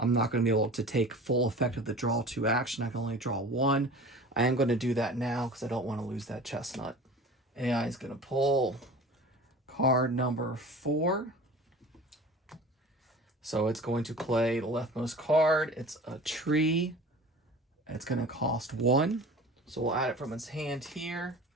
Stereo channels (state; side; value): normal; both; correlation 0.39